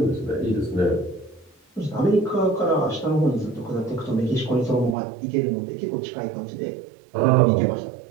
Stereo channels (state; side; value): drops out; left; at 5.0 s